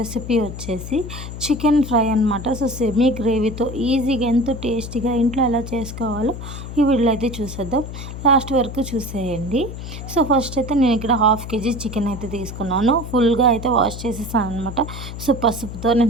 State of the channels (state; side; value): noise; left; hum, 9 dB below the sound